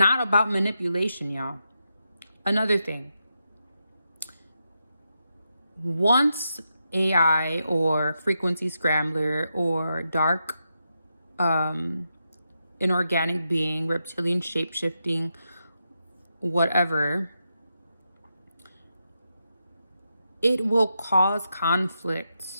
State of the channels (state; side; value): inverted; both; correlation -0.86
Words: about manipulation, y'all. Another thing. Once AI or frequency scrambler or dark inorganic being, reptilian shape-shifting, whatever, it will cause conflict